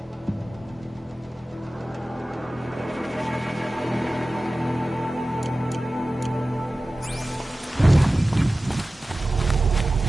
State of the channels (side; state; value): both; normal; correlation 0.96